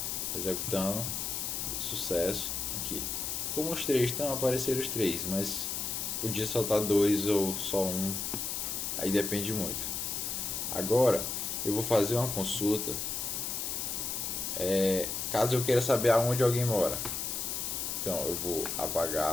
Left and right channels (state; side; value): noise; left; hiss, 2 dB below the sound